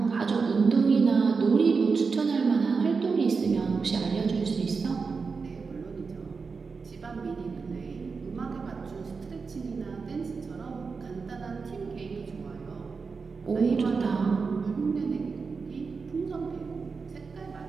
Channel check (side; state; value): left; quieter; 4.9 dB